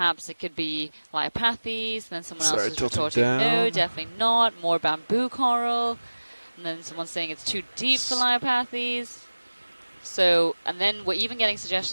it could be Leiopathes, and then someone else is retorting, no, definitely not, more bamboo coral, and then someone's saying it's too deep for Leiopathes. So, and then we're even getting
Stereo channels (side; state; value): both; inverted; correlation -1.00